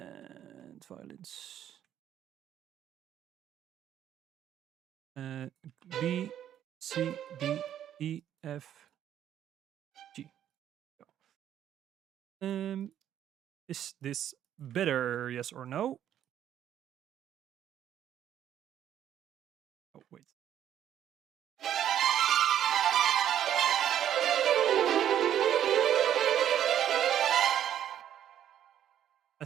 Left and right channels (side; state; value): left; quieter; 10.6 dB